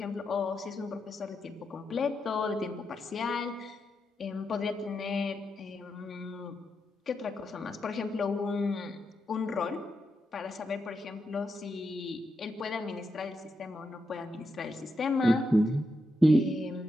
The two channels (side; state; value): both; normal; correlation 0.85